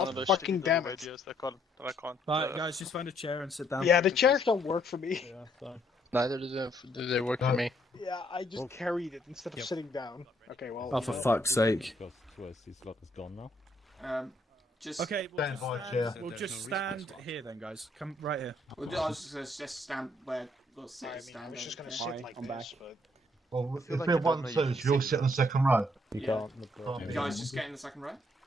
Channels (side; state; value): both; normal; correlation 0.69